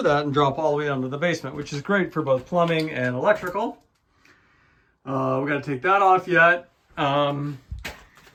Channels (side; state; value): both; identical; correlation 1.00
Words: that and drop all the way down to the basement, which is great for both plumbing and electrical. We got to take that off yet. And